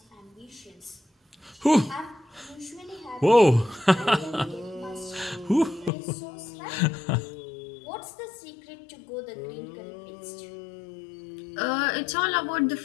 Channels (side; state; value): right; drops out; at 5.9 s